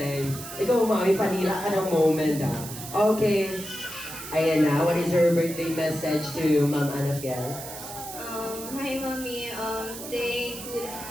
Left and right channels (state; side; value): noise; right; hiss, 11 dB below the sound